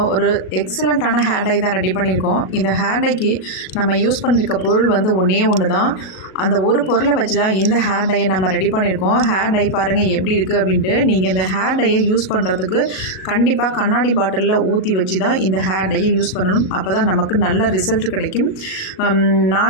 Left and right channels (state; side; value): late; right; 37 ms